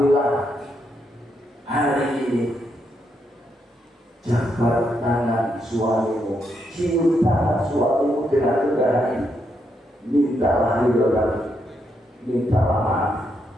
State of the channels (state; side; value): normal; both; correlation 0.79